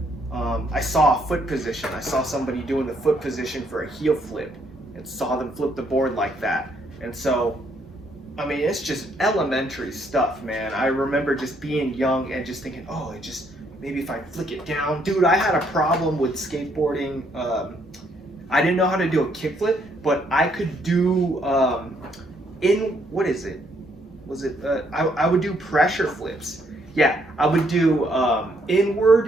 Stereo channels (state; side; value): normal; both; correlation 0.71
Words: I saw a foot position. I saw somebody doing the foot position for a heel flip, and saw them flip the board like that. And so, I mean, it's just elementary stuff, man. I remember just being young and just thinking, oh, maybe if I flick it down. Dude, I had a problem with skateboarding. I didn't know how to do a kickflip, but I could do, what is it? I would do pressure flips. Yeah, I would do